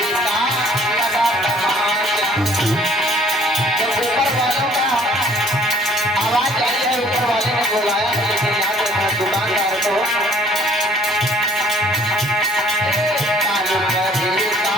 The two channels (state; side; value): normal; both; correlation 0.57